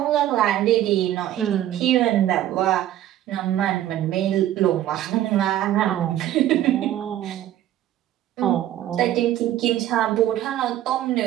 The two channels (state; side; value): quieter; left; 12.7 dB